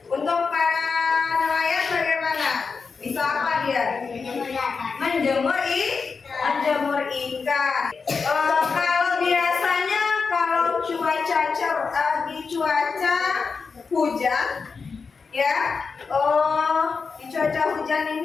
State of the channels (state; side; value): quieter; right; 5.0 dB